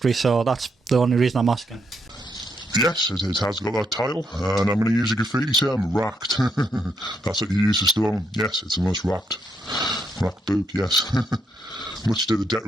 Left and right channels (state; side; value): normal; both; correlation 0.78